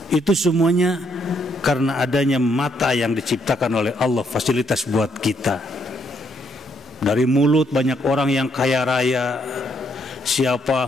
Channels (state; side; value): normal; both; correlation 0.73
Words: Itu semuanya karena adanya mata yang diciptakan oleh Allah, fasilitas buat kita. Dari mulut banyak orang yang kaya raya. Siapa?